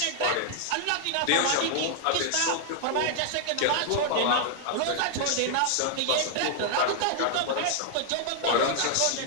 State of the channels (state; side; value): different; both; correlation -0.01